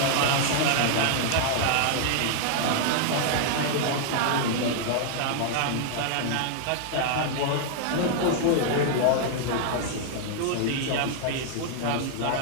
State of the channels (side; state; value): both; different; correlation 0.00